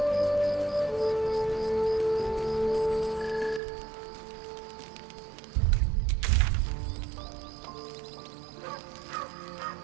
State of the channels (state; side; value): drops out; left; at 3.6 s